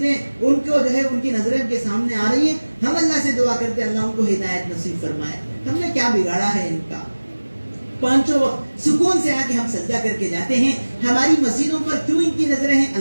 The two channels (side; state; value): both; inverted; correlation -1.00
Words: ان کو جو ہے ان کی نظریں کے سامنے آ رہی ہیں. ہم اللہ سے دعا کرتے ہیں اللہ ان کو ہدایت نصیب فرمائے. ہم نے کیا بگاڑا ہے ان کا؟ 5 وقت سکون سے آ کے ہم سجدہ کر کے جاتے ہیں. ہماری مسجدوں پر کیوں ان کی نظریں ہیں